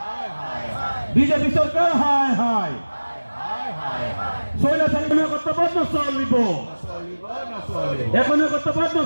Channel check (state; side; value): inverted; both; correlation -1.00